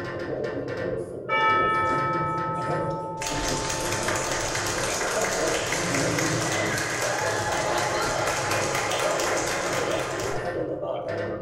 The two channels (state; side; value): identical; both; correlation 1.00